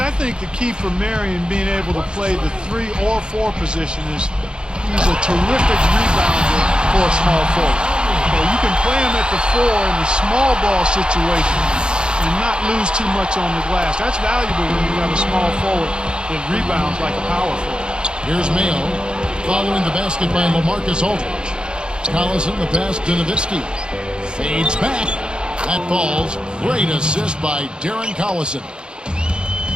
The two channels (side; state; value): left; late; 0.050 ms